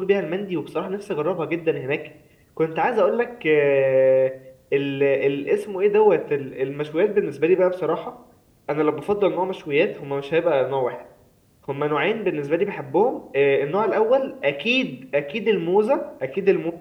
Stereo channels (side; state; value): both; identical; correlation 1.00